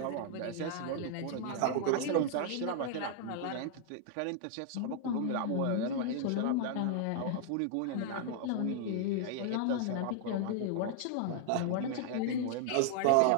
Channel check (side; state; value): both; different; correlation -0.01